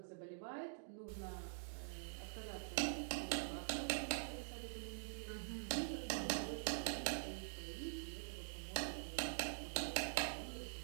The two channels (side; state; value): left; silent; digital silence